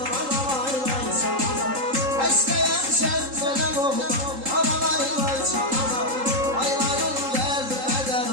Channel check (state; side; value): late; left; 3.8 ms